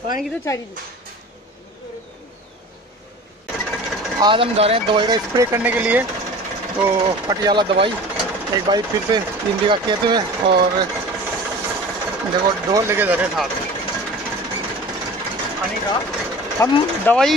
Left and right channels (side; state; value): both; normal; correlation 0.39